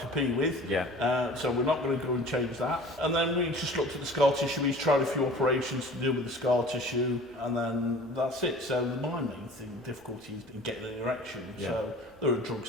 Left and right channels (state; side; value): normal; both; correlation 0.44